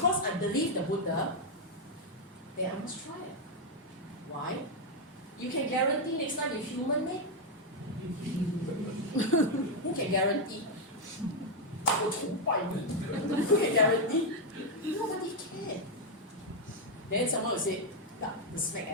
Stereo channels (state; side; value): normal; both; correlation 0.01